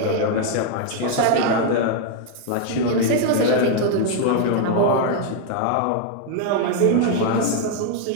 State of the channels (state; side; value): different; both; correlation 0.00